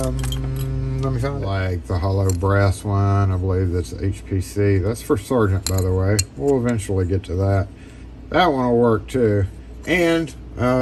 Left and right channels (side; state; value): both; identical; correlation 1.00